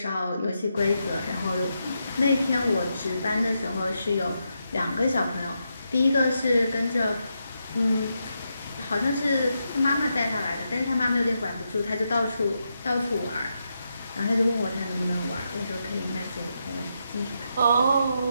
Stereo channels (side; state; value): both; inverted; correlation -0.84